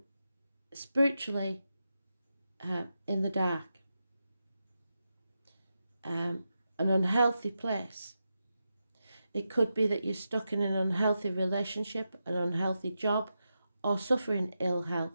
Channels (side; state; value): both; inverted; correlation -0.88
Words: spiritually in the dark, an unhealthy place. It could be that you're stuck in an unhealthy relationship, an unhealthy job, or suffering ill health.